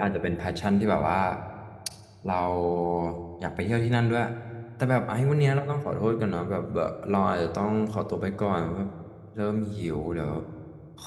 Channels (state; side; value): identical; both; correlation 1.00